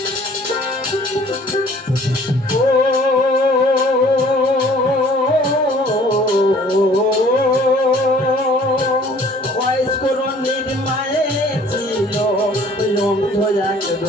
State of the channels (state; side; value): normal; both; correlation 0.54